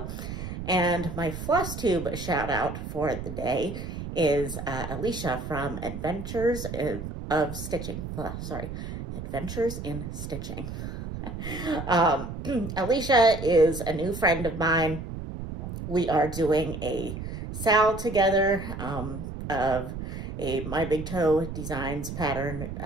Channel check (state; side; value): noise; right; rumble, 7 dB below the sound